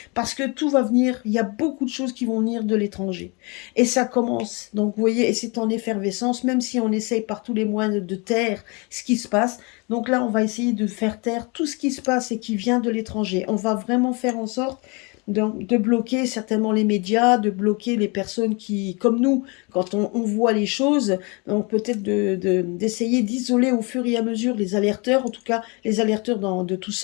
parce que tout va venir, il y a beaucoup de choses qui vont venir de l'étranger. Et ça commence, donc vous voyez, et c'est en effervescence, même si on essaye par tous les moyens de taire ce qui se passe. Donc là, on va essayer de faire taire tout ce qui se passe et qui vient de l'étranger. On va vraiment faire en sorte de bloquer certainement les médias, de bloquer les personnes qui, comme nous, quand on voit les choses, donc peut-être d'essayer d'isoler au fur et à mesure les alerteurs, en tout cas les alerteurs de tous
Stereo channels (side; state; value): right; quieter; 30.0 dB